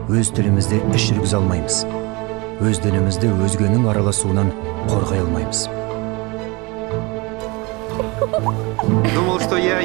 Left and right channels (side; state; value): left; quieter; 25.9 dB